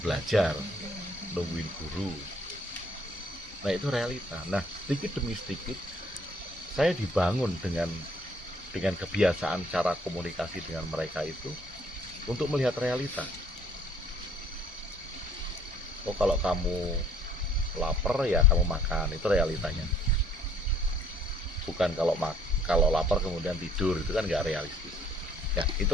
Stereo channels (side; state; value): both; normal; correlation 0.60